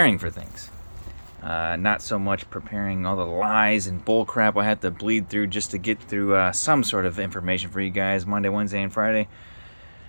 for things. Not so much preparing all the lies and bull crap I have to bleed through just to get through some sort of information for you guys Monday, Wednesday, and Friday.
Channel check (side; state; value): both; inverted; correlation -1.00